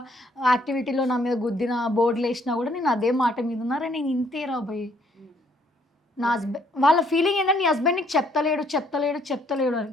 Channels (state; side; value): normal; both; correlation 0.66